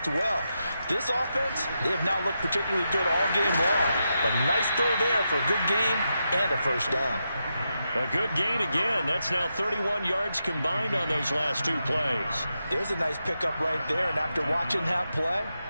well. This offense, they have not looked particularly good all game long. But nice throw there for a good gain and a first down. A good gain again. That's now 31 yards combined on those last 2 plays. There's a nice pickup right there. And after watching that play,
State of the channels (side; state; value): both; inverted; correlation -0.86